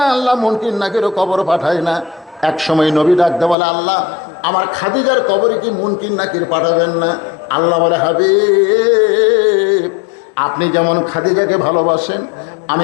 আল্লাহ মুনকির নাকিরও কবর পাঠায় না। এক সময় নবী ডাকতে বলে, আল্লাহ আমার খাদিজার কবরে কি মুনকির নাকির পাঠাবেন না? আল্লাহ বলে, হাবিব আপনি যেমন খাদিজাকে ভালোবাসেন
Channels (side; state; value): right; drops out; at 3.6 s